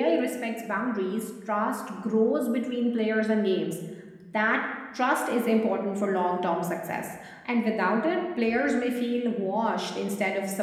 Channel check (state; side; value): identical; both; correlation 1.00